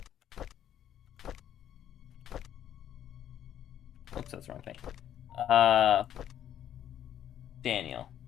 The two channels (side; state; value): right; quieter; 10.5 dB